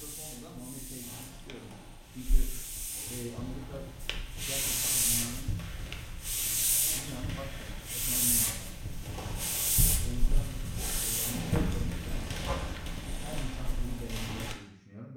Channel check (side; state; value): both; identical; correlation 1.00